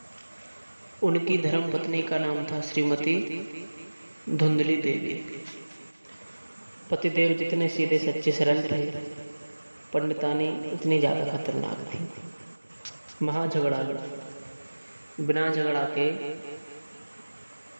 उनकी धर्म पत्नी का नाम था श्रीमती धुंधली देवी। पतिदेव जितने सीधे सच्चे सरल थे, पंडितानी उतनी ज्यादा खतरनाक थी। महाझगड़ालू, बिना झगड़ा के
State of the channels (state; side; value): inverted; both; correlation -1.00